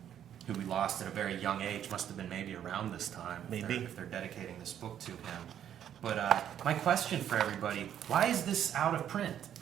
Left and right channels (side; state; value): left; quieter; 10.0 dB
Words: who we lost at a very young age. Must have been maybe around this time. Maybe. If they're dedicating this book to him. But my question for everybody: why is this out of print?